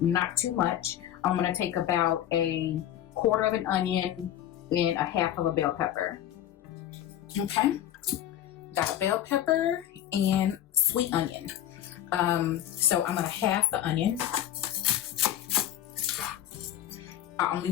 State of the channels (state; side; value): quieter; right; 11.7 dB